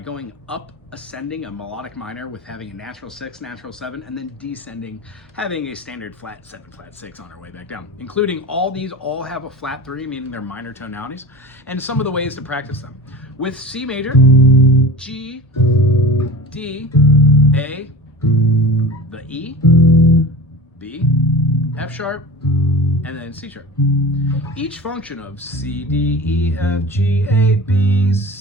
up, ascending a melodic minor with having a natural 6, natural 7, and then descending, having a standard flat 7, flat 6 on our way back down. Including all these all have a flat 3, meaning they're minor tonalities, and some of the ways to practice them. With C major, G, D, A, the E, B, F sharp, and then C sharp. Each function of C, D, E, F, G, A, B,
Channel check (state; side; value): normal; both; correlation 0.33